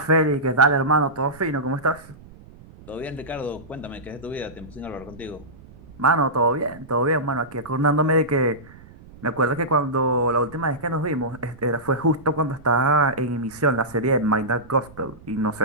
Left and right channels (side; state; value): right; noise; rumble, 21 dB below the sound